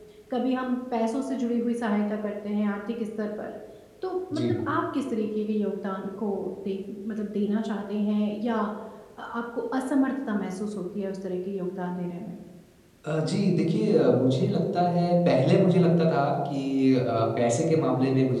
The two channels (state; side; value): identical; both; correlation 1.00